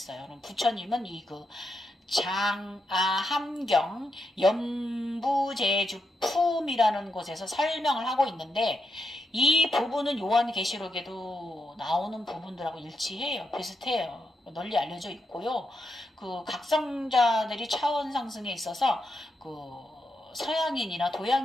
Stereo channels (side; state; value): both; normal; correlation 0.84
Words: 그럼 부처님은 함경, 연부제주, 품이라는 곳에서 설명을 하고 있는데, 이 부분은 요한계시록에도 나오는 부분들하고 일치해요. 비슷해요. 널리 알려져 있고요. 각성자들이 차원 상승에 있어서, 서양인이나